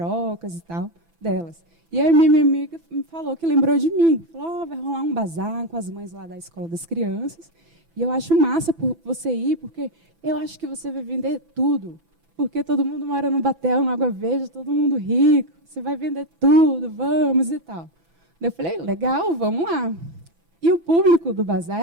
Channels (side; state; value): left; late; 6.0 ms